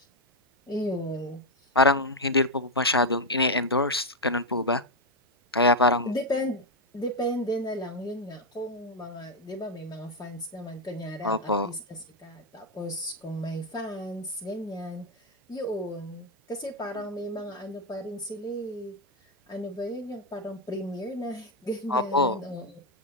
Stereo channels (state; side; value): normal; both; correlation 0.03